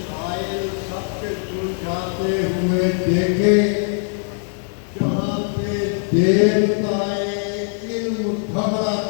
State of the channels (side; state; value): right; silent; 62 dB below the other